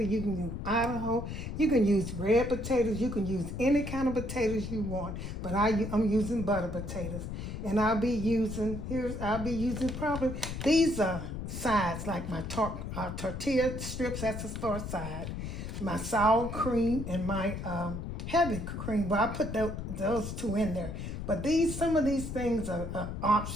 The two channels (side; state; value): left; noise; rumble, 6 dB below the sound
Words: you can use Idaho, you can use red potatoes, you can use any kind of potatoes you want. But I'm using butter potatoes, and I'll be using probably these sides like my tortilla strips. That's the store side. My sour cream and my heavy cream, but I put those two in there. But some of these things are